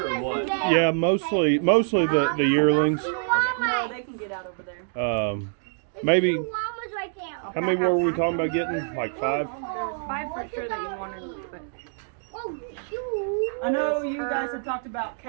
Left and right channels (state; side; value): silent; left; digital silence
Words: or what? Yeah, mostly the yearlings. No, they can get out over there. Maybe. How many were we talking about getting? Like 5? There's 5 for sure that you wanted, but I know you guys have talked about